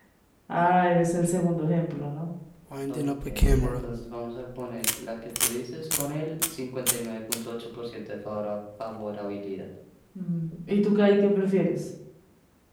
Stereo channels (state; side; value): identical; both; correlation 1.00